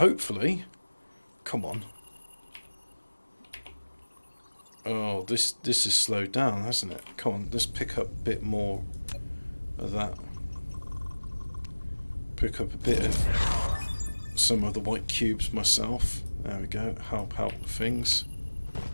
come on. Oh, this is slowed down, hasn't it? Come on, let's pick up a bit more of that pick up a bit of some of the white cubes myself. There we go, help out with things.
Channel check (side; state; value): both; inverted; correlation -1.00